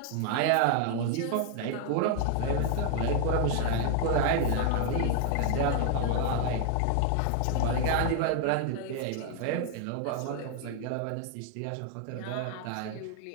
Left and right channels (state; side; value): different; both; correlation 0.00